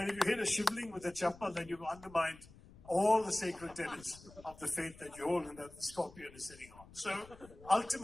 if you hit a shivling with a chappal, then you've undermined all the sacred tenets of the faith that you hold and that the scorpion is sitting on. So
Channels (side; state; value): left; noise; rumble, 21 dB below the sound